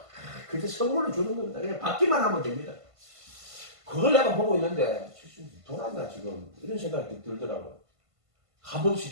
그저 선물로 주는 겁니다. 그냥 받기만 하면 됩니다. 그걸 내가 보고 있는데, 돌았나 지금? 이런 생각이 들더라고요. 값없이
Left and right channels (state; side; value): late; left; 1.5 ms